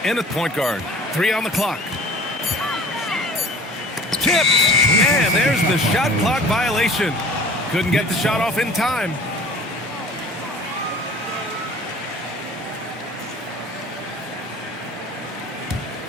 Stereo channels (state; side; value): normal; both; correlation 0.45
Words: in at point guard. 3 on the clock. Tip! And there's the shot clock violation. Couldn't get the shot off in time.